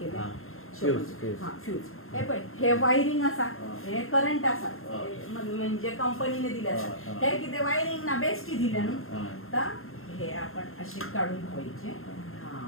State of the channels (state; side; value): late; right; 0.61 ms